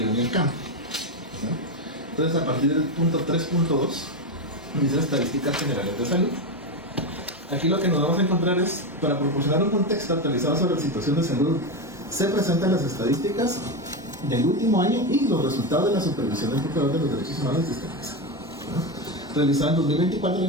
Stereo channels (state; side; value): normal; both; correlation 0.13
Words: en el campo, ¿no? Entonces, a partir del punto 3.2 dice estadísticas generales de salud. Aquí lo que nos vamos a encontrar es, para proporcionar un contexto actualizado sobre la situación de salud, se presentan las estadísticas del último año y los resultados de la supervisión del procurador de los derechos humanos de sistema de salud, ¿no? Realizado en 2024,